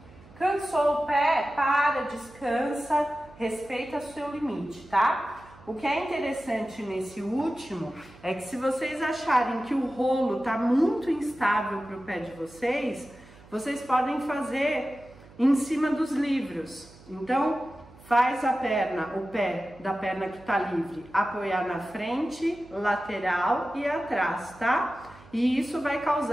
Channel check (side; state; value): right; noise; hum, 23 dB below the sound